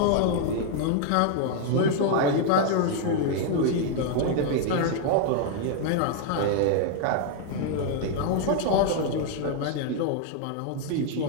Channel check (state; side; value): different; both; correlation 0.00